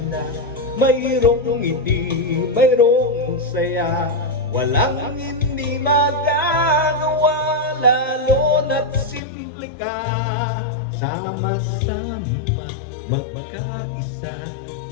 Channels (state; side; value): drops out; right; at 9.2 s